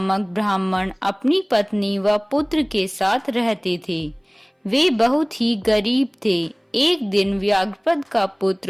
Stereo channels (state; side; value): identical; both; correlation 1.00